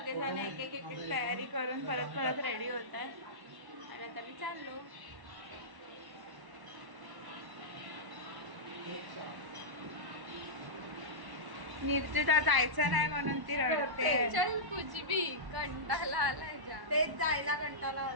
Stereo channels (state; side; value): late; left; 1.1 ms